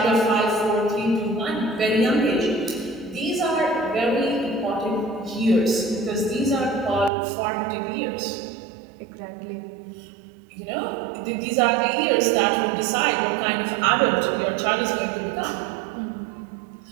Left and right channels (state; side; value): drops out; left; at 7.1 s